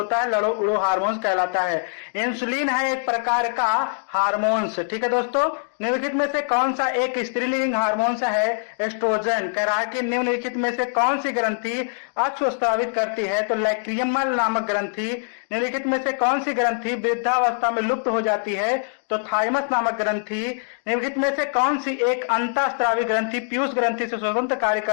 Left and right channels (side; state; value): right; silent; digital silence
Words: है लड़ो उड़ो हार्मोन्स कहलाता है। इंसुलिन है एक प्रकार का हार्मोन्स। ठीक है दोस्तों। निम्नलिखित में से कौन सा एक स्त्रीलिंग हार्मोन्स है? एस्ट्रोजन। कह रहा है कि निम्नलिखित में से कौन सी ग्रंथि अक्ष स्रावित करती है? तो लैक्रियमल नामक ग्रंथि। निम्नलिखित में से कौन सी ग्रंथि वृद्धावस्था में लुप्त हो जाती है? तो थाइमस नामक ग्रंथि। निम्नलिखित में से कौन सी एक अंतःस्रावी ग्रंथि पीयूष ग्रंथि से स्वतंत्र कार्य